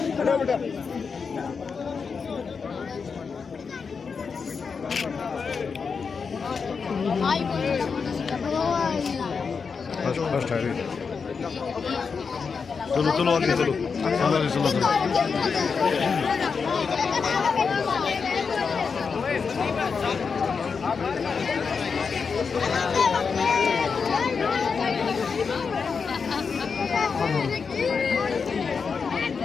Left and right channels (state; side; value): quieter; right; 5.5 dB